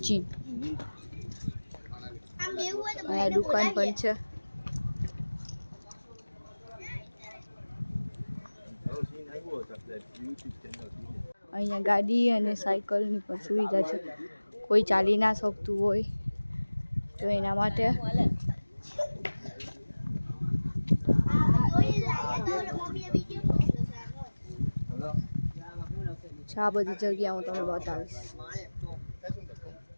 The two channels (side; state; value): both; inverted; correlation -1.00